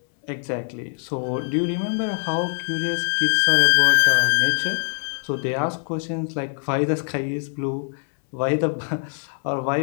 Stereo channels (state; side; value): silent; right; 61 dB below the other